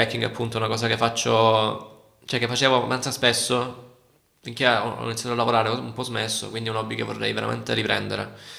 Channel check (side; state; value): both; identical; correlation 1.00